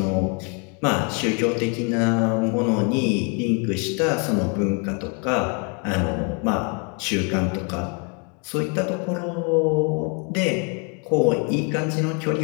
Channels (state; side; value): quieter; right; 35.8 dB